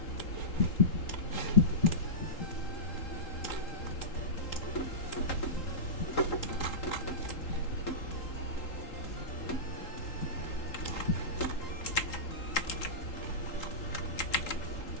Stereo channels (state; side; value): late; right; 3.8 ms